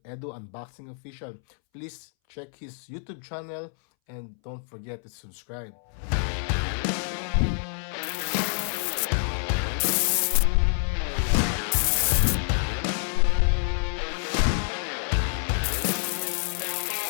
Edu Unboxing Official. Please check his YouTube channel and don't forget to subscribe.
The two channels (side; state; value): right; silent; 60 dB below the other